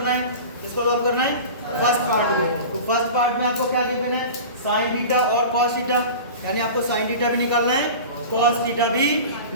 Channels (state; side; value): inverted; both; correlation -0.34